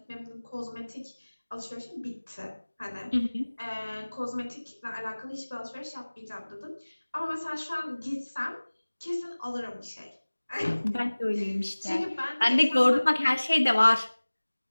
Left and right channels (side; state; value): both; inverted; correlation -1.00